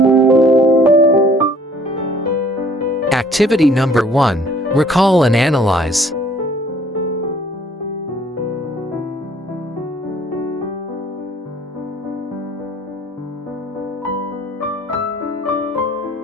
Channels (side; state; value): both; normal; correlation 0.57